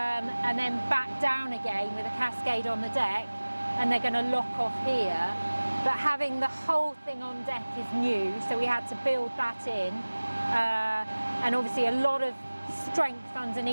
then back down again with a cascade on the deck, and they're going to lock off here. But having the whole thing on deck is new, so we had to build that in, and obviously a lot of strength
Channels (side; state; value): both; inverted; correlation -1.00